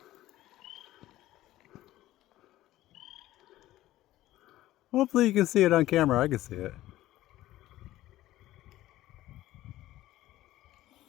Hopefully you can see it on camera. I can see it.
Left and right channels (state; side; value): quieter; right; 15.2 dB